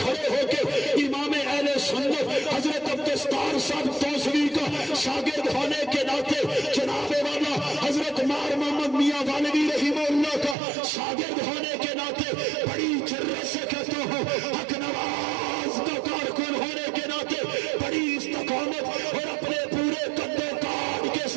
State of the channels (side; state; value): left; drops out; at 10.6 s